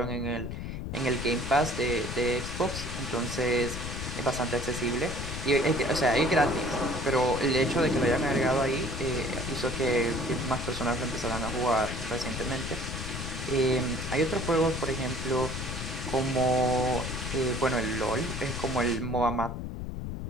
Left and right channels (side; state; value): left; noise; rumble, 6 dB below the sound